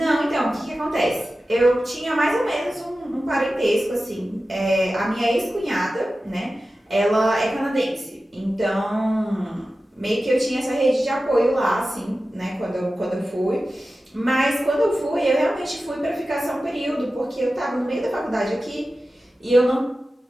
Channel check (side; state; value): both; normal; correlation 0.94